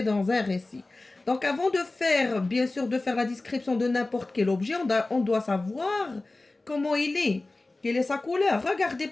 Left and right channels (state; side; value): quieter; right; 3.1 dB